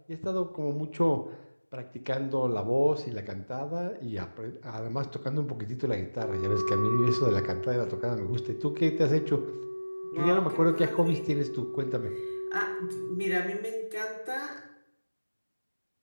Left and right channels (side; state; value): both; inverted; correlation -1.00